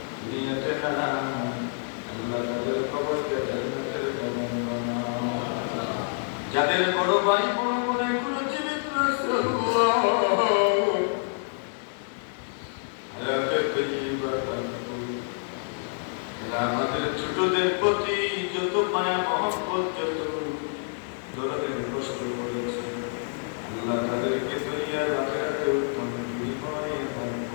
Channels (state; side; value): silent; right; 60 dB below the other